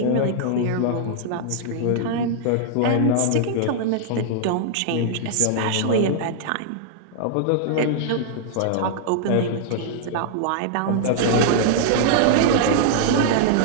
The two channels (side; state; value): both; different; correlation -0.01